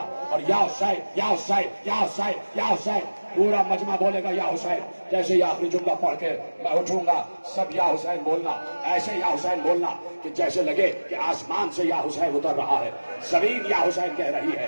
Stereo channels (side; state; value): both; inverted; correlation -1.00